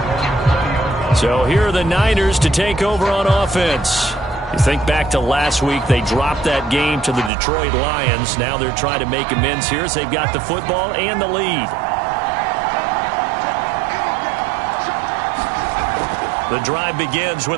So here are the Niners to take over on offense. You think back to last week, they dropped that game to the Detroit Lions. Now they're trying to make amends here as they've got the football and the lead. The drive begins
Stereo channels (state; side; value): drops out; left; at 7.3 s